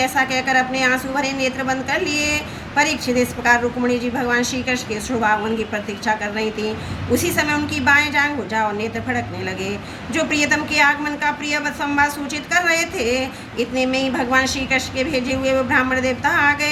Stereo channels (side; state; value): both; identical; correlation 1.00